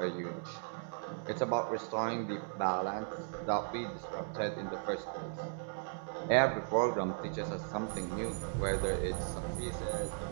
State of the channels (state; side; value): silent; left; digital silence